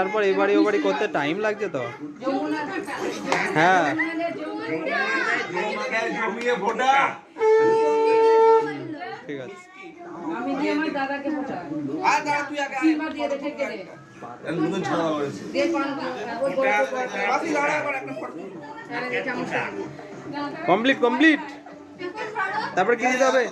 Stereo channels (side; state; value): both; identical; correlation 1.00